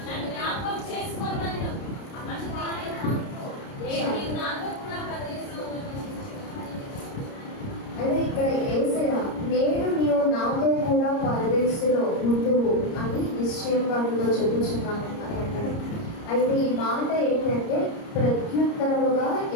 నన్ను జ్ఞాపకం చేసుకోమన్నాడు. అందుకు ఆయన, నీవు నాతో కూడా పరదేశంలో అయితే ఇక్కడ యేసయ్య నేడు నీవు నాతో కూడా పరదేశంలో ఉండువు అని నిశ్చయంగా నీతో చెప్పుచున్నాను అని అన్నాడు. అయితే ఈ మాట ఏంటంటే ప్రత్యుత్తరముగా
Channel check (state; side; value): late; right; 30 ms